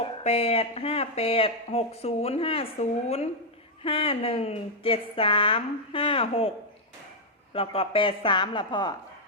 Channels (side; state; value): both; normal; correlation -0.02